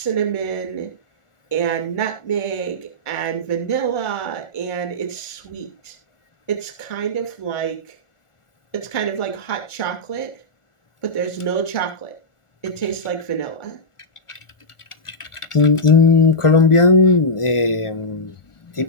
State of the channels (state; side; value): late; right; 1.4 ms